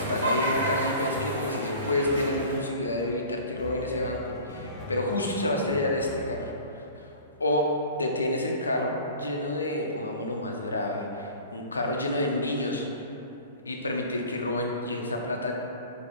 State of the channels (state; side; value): inverted; both; correlation -0.42